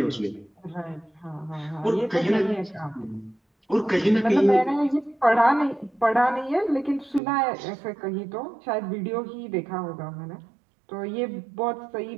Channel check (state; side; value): drops out; left; at 7.2 s